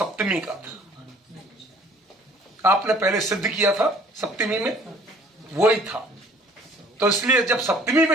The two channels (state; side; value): normal; both; correlation 0.54